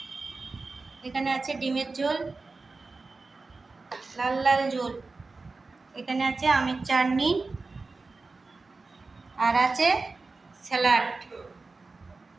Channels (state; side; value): quieter; left; 3.8 dB